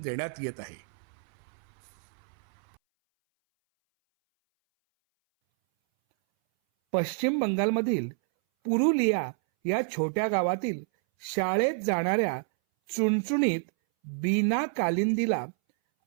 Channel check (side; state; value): left; silent; 59 dB below the other